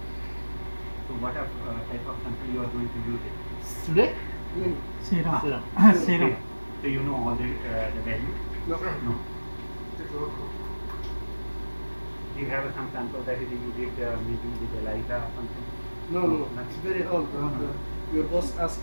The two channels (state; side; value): inverted; both; correlation -1.00